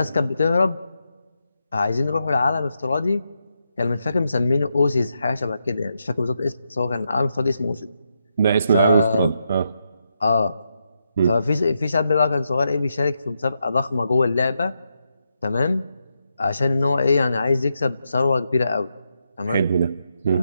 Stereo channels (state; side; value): inverted; both; correlation -0.83